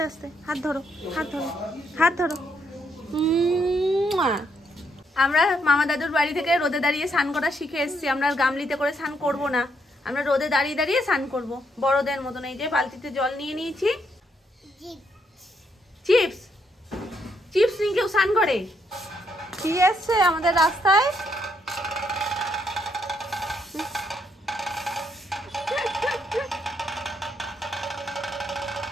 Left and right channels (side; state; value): both; normal; correlation 0.75